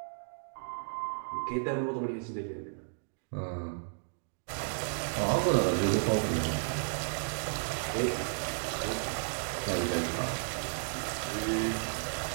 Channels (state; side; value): silent; left; digital silence